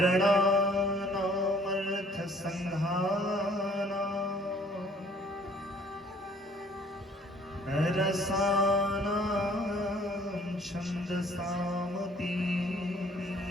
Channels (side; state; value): both; normal; correlation 0.57